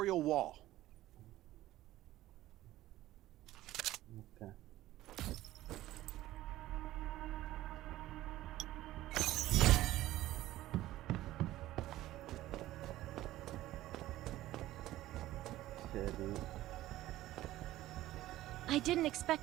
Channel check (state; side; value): quieter; left; 15.4 dB